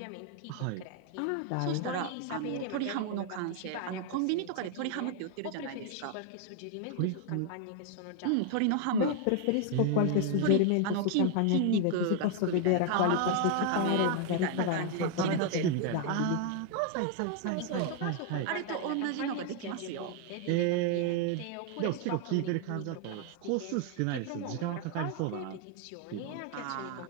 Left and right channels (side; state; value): both; different; correlation 0.00